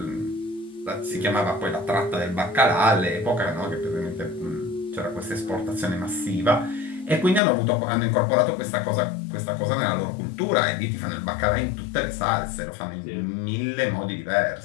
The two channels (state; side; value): drops out; right; at 7.4 s